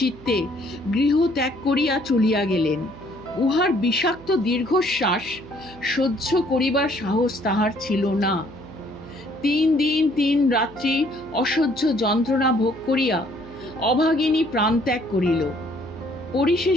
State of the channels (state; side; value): noise; right; hum, 21 dB below the sound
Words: গৃহ ত্যাগ করিয়া চলিয়া গেলেন। উহার বিষাক্ত দীর্ঘশ্বাস সহ্য করিবার সাহস তাহার ছিল না। 3 দিন 3 রাত্রি অসহ্য যন্ত্রণা ভোগ করিয়া অভাগিনী প্রাণত্যাগ করিল।